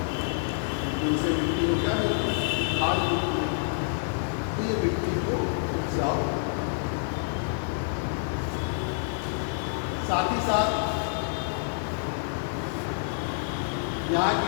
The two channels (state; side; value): silent; right; digital silence